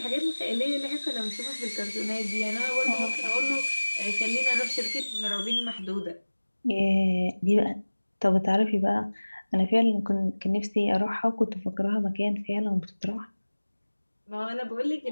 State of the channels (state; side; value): inverted; both; correlation -1.00